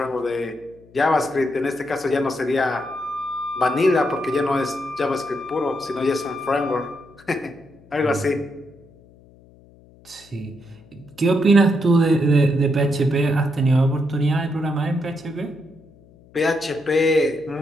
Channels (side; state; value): left; noise; hum, 26 dB below the sound